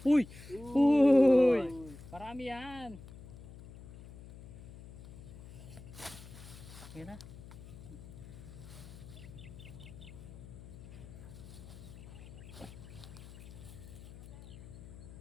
Uy! Uy! Marami yan. Yan na.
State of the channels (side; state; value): left; noise; hum, 15 dB below the sound